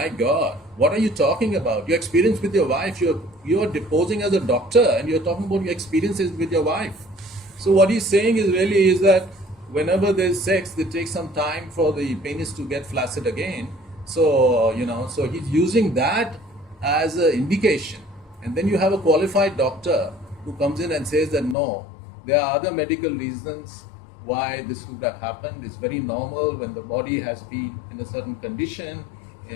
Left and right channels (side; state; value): right; drops out; at 21.6 s